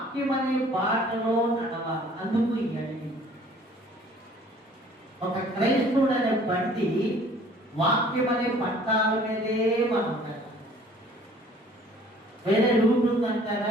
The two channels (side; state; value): both; normal; correlation 0.53